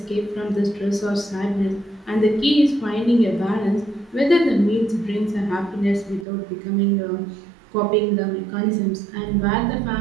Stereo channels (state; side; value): drops out; left; at 6.2 s